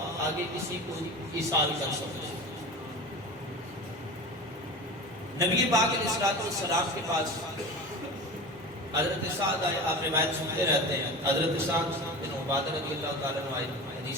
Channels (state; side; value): normal; both; correlation 0.31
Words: آگے کسی کو ایصال کر سکتے ہیں. نبی پاک علیہ الصلوۃ والسلام کے پاس حضرت سعد آئے. آپ روایت سنتے رہتے ہیں. حضرت سعد بن عبادہ رضی اللہ تعالیٰ عنہ آئے.